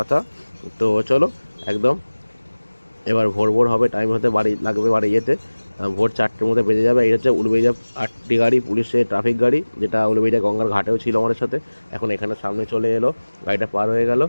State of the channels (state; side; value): inverted; both; correlation -1.00